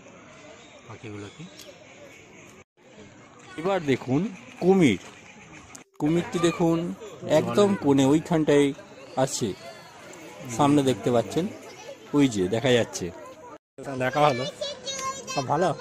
এবার দেখুন কুমির, কুমিরটি দেখুন একদম কোণে ওইখানটায় আছে, সামনে দেখতে পাচ্ছেন, ওই যে দেখা যাচ্ছে, দেখা হলো ভালো,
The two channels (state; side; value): identical; both; correlation 1.00